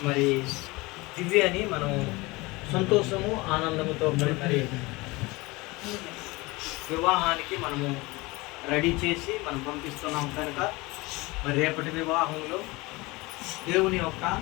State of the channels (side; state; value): right; quieter; 23.0 dB